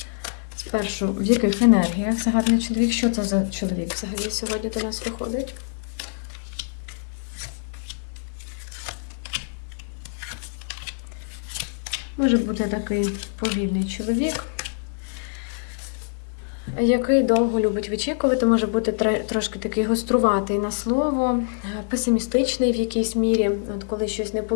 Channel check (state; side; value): silent; right; 62 dB below the other